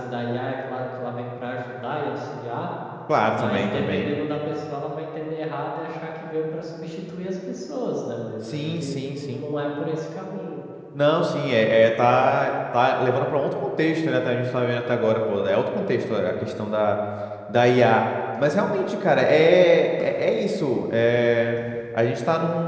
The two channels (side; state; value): both; identical; correlation 1.00